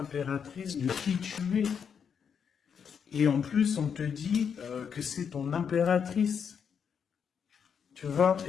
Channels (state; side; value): quieter; right; 7.1 dB